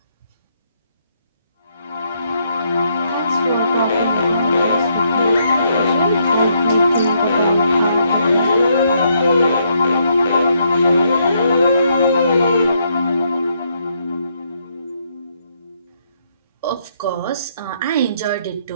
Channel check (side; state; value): both; inverted; correlation -0.74